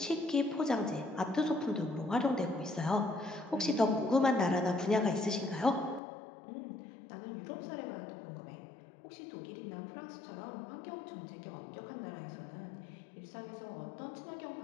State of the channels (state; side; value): drops out; right; at 6.0 s